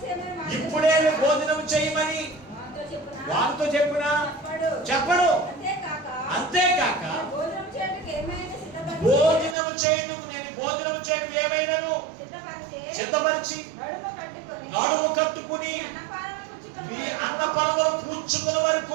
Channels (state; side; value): drops out; left; at 9.6 s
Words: ఇప్పుడే భోజనం చేయమని వాడితో చెప్పినా చెప్పడు. అంతేకాక భోజనం చేయడం నేను భోజనం చేయడం ఏమైనాను సిద్ధపరిచి నడుము కట్టుకుని మీ అన్నపానములు పూడ్చుకునే